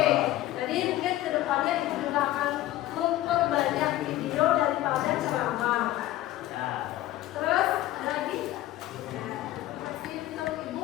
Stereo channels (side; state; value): right; quieter; 15.1 dB